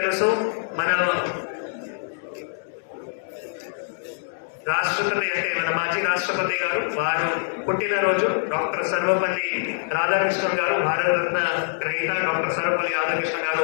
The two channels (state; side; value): silent; right; digital silence